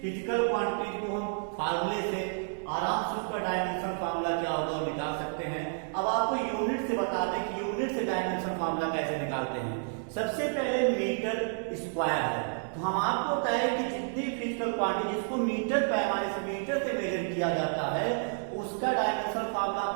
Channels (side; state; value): left; silent; digital silence